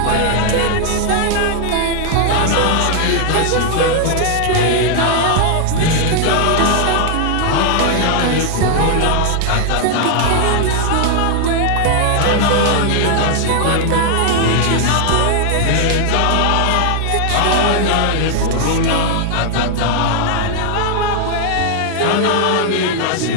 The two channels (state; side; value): different; both; correlation 0.00